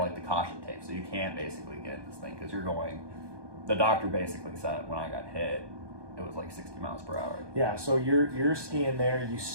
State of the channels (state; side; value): late; left; 1.2 ms